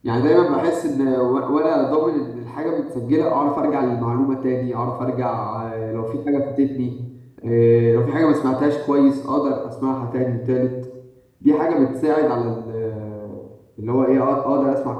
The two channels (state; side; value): identical; both; correlation 1.00